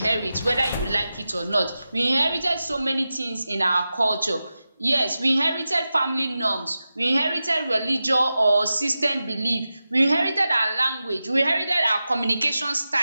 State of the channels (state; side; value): inverted; both; correlation -0.93